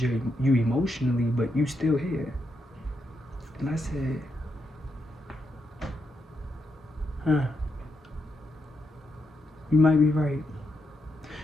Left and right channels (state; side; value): normal; both; correlation 0.82